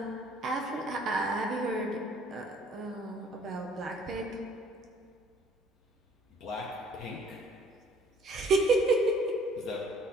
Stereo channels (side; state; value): both; normal; correlation 0.57